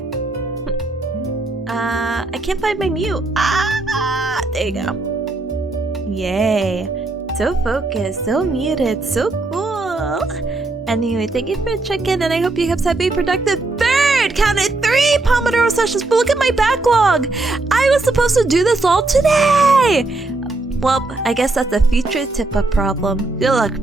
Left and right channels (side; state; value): left; quieter; 3.2 dB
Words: I can't find my mute. There you go. Yay. So focused, so muted, so cool. Anyway, thank you for checking, and I hope you guys have a productive third. Counted 3 Pomodoro sessions, but look at my backlog. I was supposed to do this all today. Well, I guess that's a future Tippa problem. Good luck,